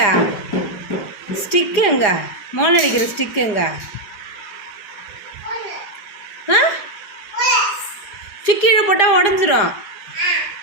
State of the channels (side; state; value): right; late; 4.9 ms